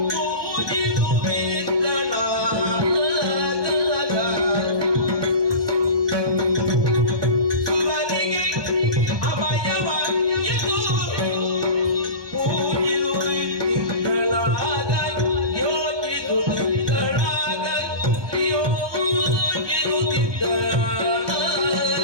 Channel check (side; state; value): left; late; 1.2 ms